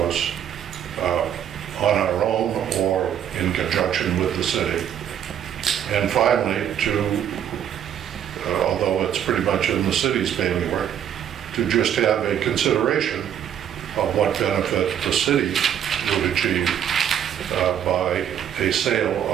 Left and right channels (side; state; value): left; quieter; 9.6 dB